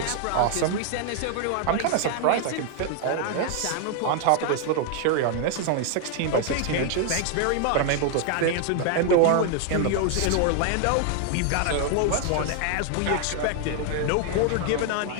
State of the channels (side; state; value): both; different; correlation 0.00